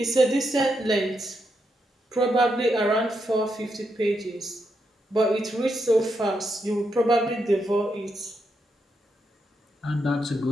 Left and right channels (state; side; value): normal; both; correlation 0.82